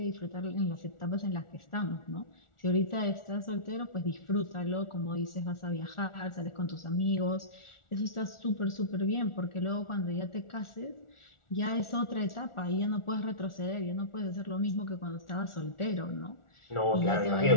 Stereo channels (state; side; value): late; right; 1.4 ms